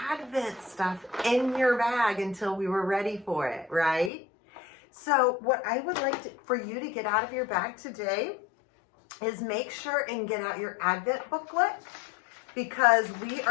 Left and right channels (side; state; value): right; drops out; at 4.1 s